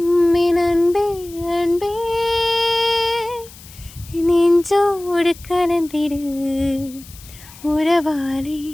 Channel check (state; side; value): noise; left; hiss, 20 dB below the sound